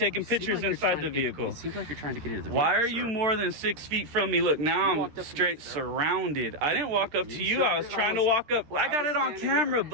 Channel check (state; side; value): late; left; 13 ms